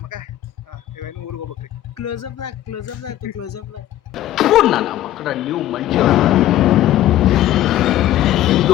ಮಕ್ಕ ಇವ ಇನ್ನು ಊರಿಗೆ ಹೋಗ್ಬೇಕ್ರಿ ಕ್ಲೋಸ್ ಅಪ್ ಆಯ್ತು ನನ್ನ ಮಕ್ಕಳ ನೀವು ಮಂಜು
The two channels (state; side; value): quieter; right; 13.6 dB